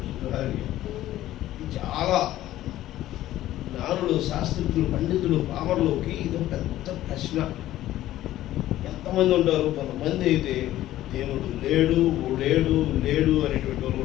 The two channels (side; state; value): right; quieter; 14.2 dB